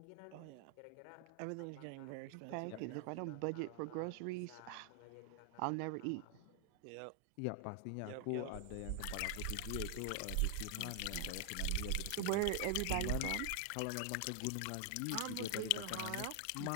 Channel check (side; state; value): both; different; correlation 0.00